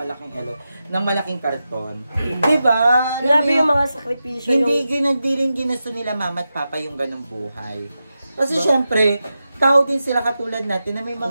karton. Diba? Grabe yung mga sakripisyo. Hindi rin ginusto nila Mama at Papa yung ganong buhay. Kasi syempre, tao din sila katulad natin na may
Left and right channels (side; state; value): both; inverted; correlation -0.91